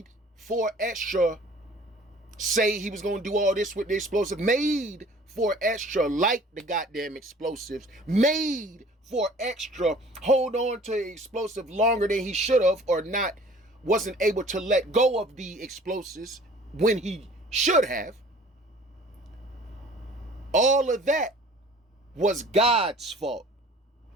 Fo Extra say he was going to do all this with the explosive, made Fo Extra like the goddamn explosives, made Fo Extra hold on to the explosive longer than he should have, or wasn't able to let go of the explosives when he should have. All of that was God's fault,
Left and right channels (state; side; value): normal; both; correlation 0.50